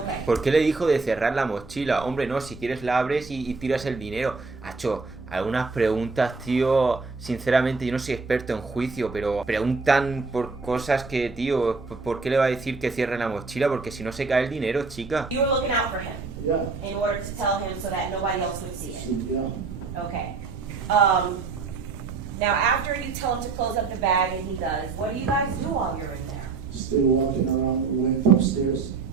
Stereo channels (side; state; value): left; quieter; 4.3 dB